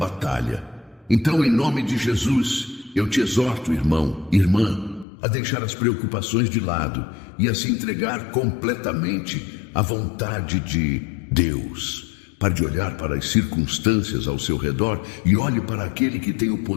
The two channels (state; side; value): drops out; right; at 5.1 s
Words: Então, em nome de Jesus, eu te exorto, irmão, irmã, a deixar as preocupações de lado e a se entregar completamente à vontade de Deus. Pare de olhar para as circunstâncias ao seu redor e olhe para aquele que tem o